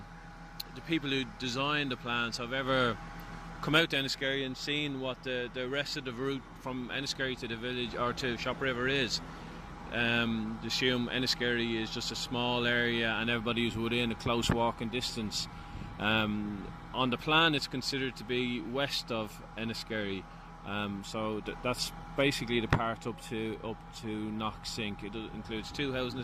people who designed the plans have ever come out to Enniskerry and seen what the rest of the route from Enniskerry to the village or to Shopriver is. Assume Enniskerry is just a small area and everybody is within a close walking distance. On the plan it's considered to be west of Enniskerry, so that's basically the part up to Knocksink. It includes 2 housing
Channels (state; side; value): identical; both; correlation 1.00